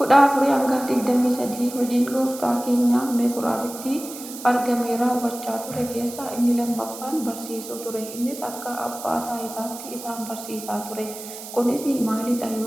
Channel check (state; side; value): noise; right; hiss, 12 dB below the sound